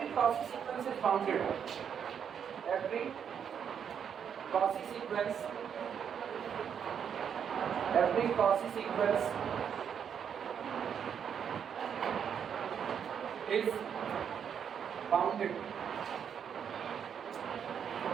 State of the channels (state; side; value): quieter; left; 7.9 dB